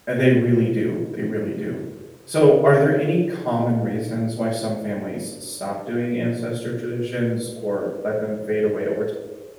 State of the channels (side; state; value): both; identical; correlation 1.00